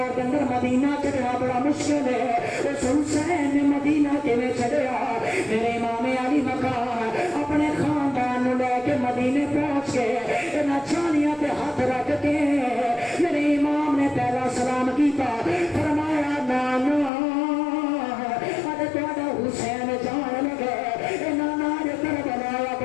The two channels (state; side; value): drops out; right; at 17.1 s